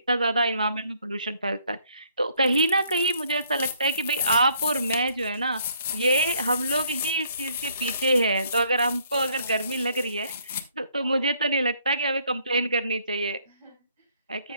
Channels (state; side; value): inverted; both; correlation -0.66